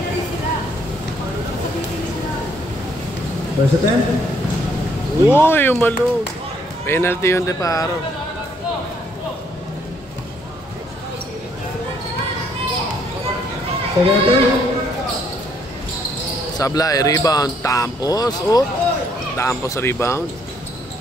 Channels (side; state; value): both; normal; correlation 0.68